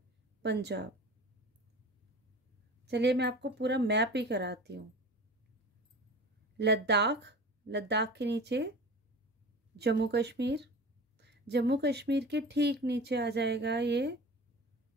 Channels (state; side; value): normal; both; correlation 0.37